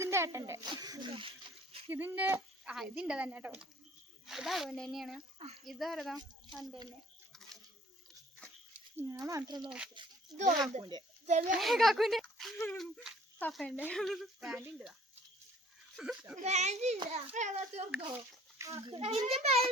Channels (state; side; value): normal; both; correlation 0.55